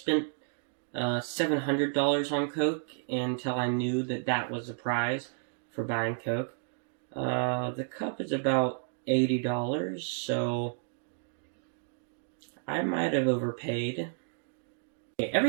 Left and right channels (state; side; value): silent; left; digital silence